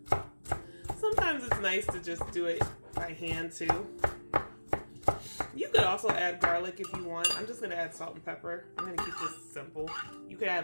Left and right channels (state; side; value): inverted; both; correlation -1.00